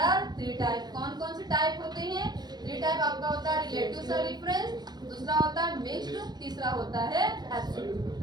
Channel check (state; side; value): late; left; 0.20 ms